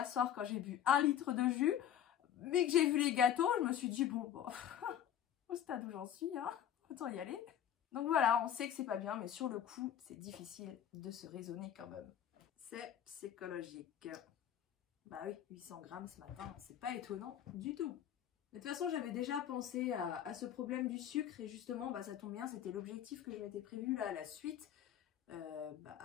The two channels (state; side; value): quieter; right; 10.1 dB